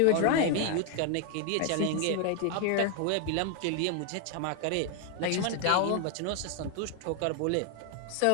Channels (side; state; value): both; different; correlation 0.01